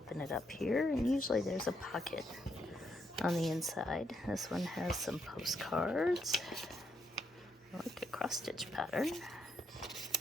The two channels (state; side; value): normal; both; correlation 0.76